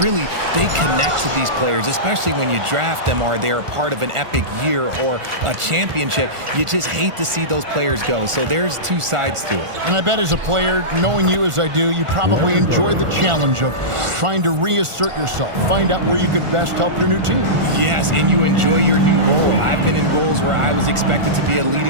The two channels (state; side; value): late; left; 1.4 ms